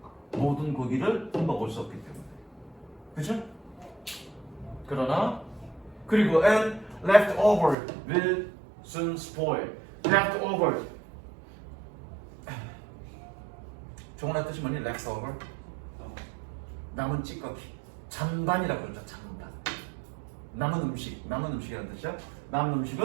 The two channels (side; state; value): left; drops out; at 7.8 s